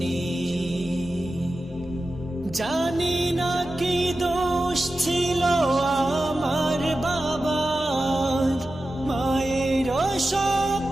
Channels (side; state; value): both; normal; correlation 0.93